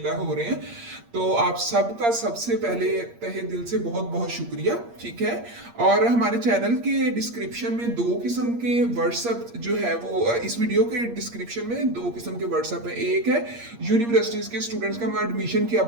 हो रहे हैं। तो आप सबका सबसे पहले तहे दिल से बहुत बहुत शुक्रिया। ठीक है। और हमारे चैनल के डिस्क्रिप्शन में दो किस्म के व्हाट्सएप जो है वो इस वीडियो के डिस्क्रिप्शन में दो किस्म के व्हाट्सएप है। एक है यूनिवर्सिटीज के स्टूडेंट्स का एडमिशन की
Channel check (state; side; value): late; left; 8.6 ms